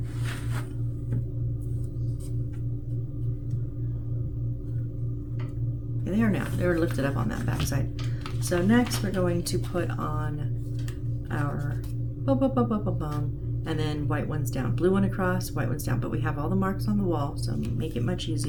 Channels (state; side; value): identical; both; correlation 1.00